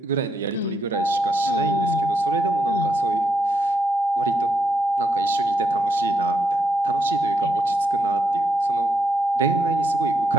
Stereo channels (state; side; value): normal; both; correlation 0.79